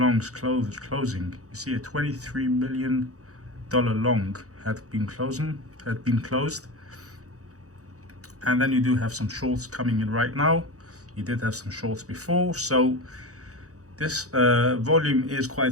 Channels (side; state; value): left; late; 0.66 ms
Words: closing. You see a $23 million long had been closed, and then you do have some shorts coming in right now. You did have some shorts before, so this volume is